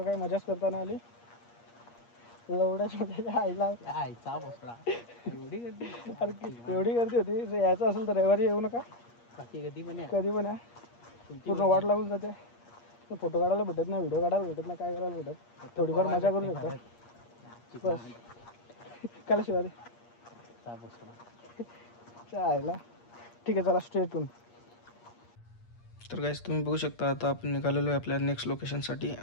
काही मजाच करता नाही आली. एवढ्याच आईला आईचा बसला एवढी गर्दी. एवढी गर्दी होती. जर यायचं असेल तर रविवारी येऊ नका. बाकी कधी पण कधी पण या. पूर्ण वाट लागून जाते. फोटो काढायला भेटत नाही, व्हिडिओ काढायला भेटत नाही, काय करायला भेटत. थोडीफार मजा करू शकतो बस. काला शिवाय चायला. ठीक आहे, चला स्ट्रेट. तर गाईज तुम्ही बघू शकता आता आपण निघालेलो आहे आपल्या नेक्स्ट लोकेशनसाठी.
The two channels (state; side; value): late; right; 8.5 ms